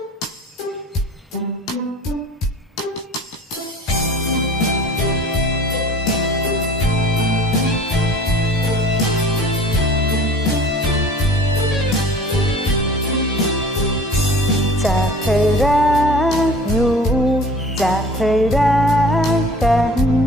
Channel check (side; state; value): both; normal; correlation 0.45